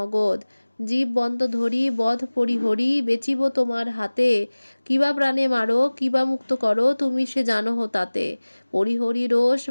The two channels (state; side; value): inverted; both; correlation -1.00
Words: জীব বন্ত ধরি বধ পরিহরি বেচিব তোমার হাতে, কিবা প্রাণে মারো কিবা মুক্ত করো তুমি সে জানহ তাতে। পরিহরি রোষ